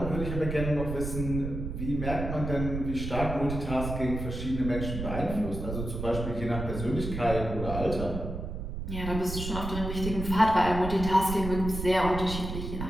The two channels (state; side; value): noise; right; rumble, 5 dB below the sound